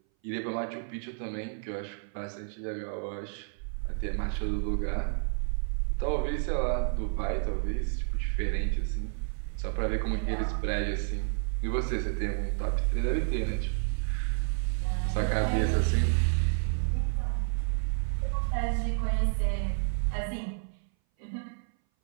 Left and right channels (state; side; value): silent; left; 58 dB below the other